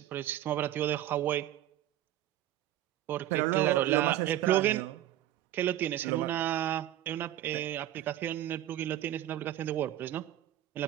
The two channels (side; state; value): left; quieter; 13.0 dB